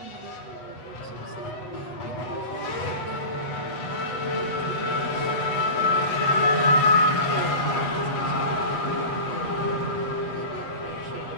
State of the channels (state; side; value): late; right; 8.1 ms